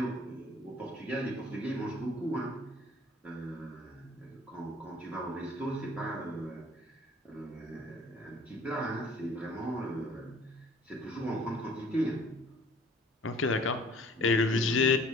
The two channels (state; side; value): normal; both; correlation 0.53